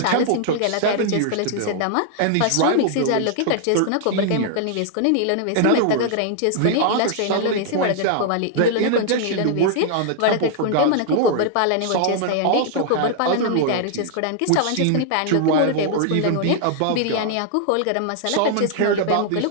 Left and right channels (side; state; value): both; different; correlation -0.01